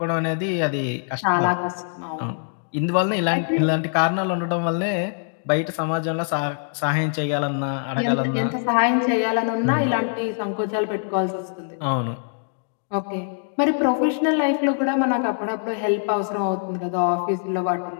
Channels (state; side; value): silent; right; 63 dB below the other